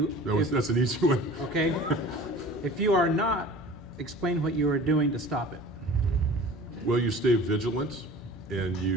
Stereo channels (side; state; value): both; normal; correlation 0.42